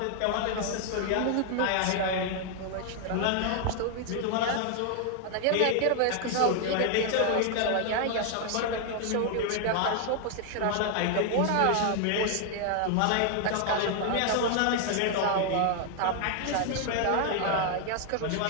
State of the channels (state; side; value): different; both; correlation 0.00